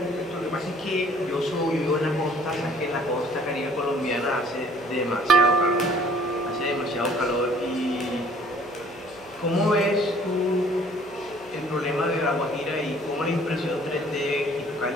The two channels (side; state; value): right; noise; hum, 26 dB below the sound